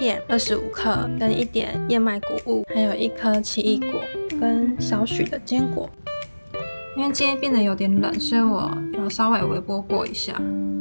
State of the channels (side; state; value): both; inverted; correlation -1.00